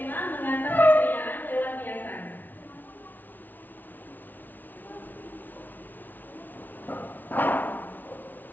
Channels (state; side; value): late; right; 0.085 ms